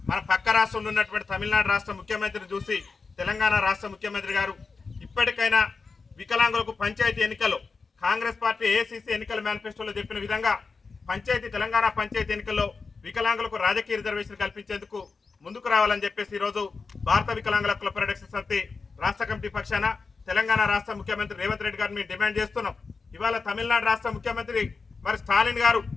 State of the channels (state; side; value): quieter; right; 4.5 dB